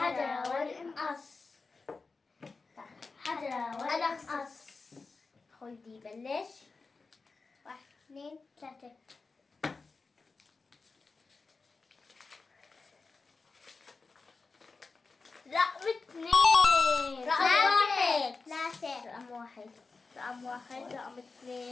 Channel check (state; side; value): quieter; right; 4.2 dB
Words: ونقص. حجر ونقص. خدي بلش. 1 2 3. رقم 2. رقم 1. 3. رقم 1. رقم 1. رقم